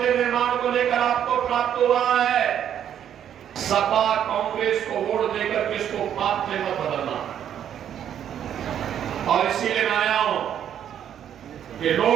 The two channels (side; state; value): left; quieter; 9.7 dB